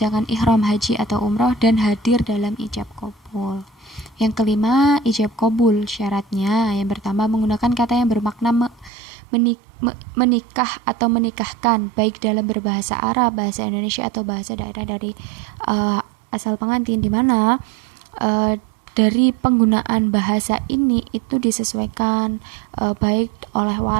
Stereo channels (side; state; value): left; drops out; at 8.9 s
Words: ihram haji atau umroh, dan hadir dalam ijab qabul. Yang kelima, ijab qabul. Syaratnya yang pertama menggunakan kata yang bermakna menikah atau menikahkan, baik dalam berbahasa Arab, bahasa Indonesia, atau bahasa daerah dari asal pengantin, di mana dari penggunaan bahasa ini itu disesuaikan baik oleh